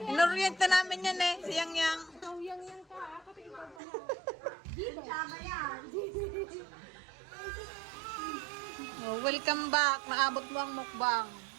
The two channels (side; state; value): left; drops out; at 3.8 s